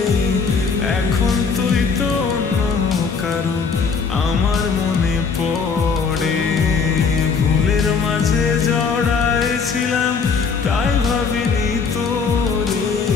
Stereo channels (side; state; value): right; quieter; 5.4 dB